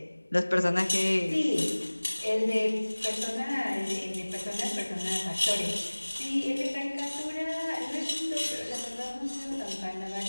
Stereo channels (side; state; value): both; inverted; correlation -1.00